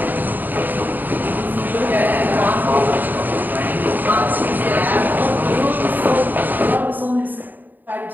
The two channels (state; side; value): late; left; 0.088 ms